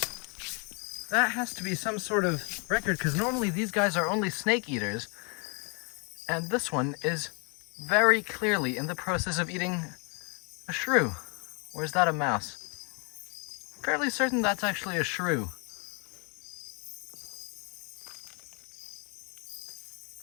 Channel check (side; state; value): right; quieter; 34.5 dB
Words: That has to be some sort of record because normally these guys are only snake eaters. And this one is very clearly in the process of eating a shrew. Or is that a mouse? Fairly certain that's actually a shrew.